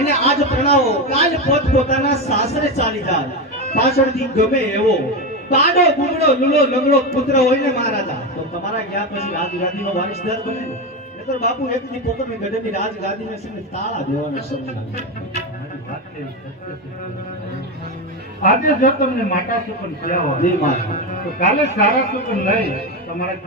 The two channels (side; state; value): both; normal; correlation 0.14